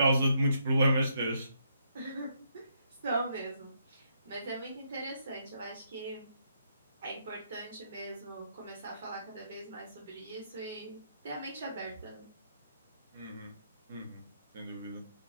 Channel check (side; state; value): both; inverted; correlation -0.75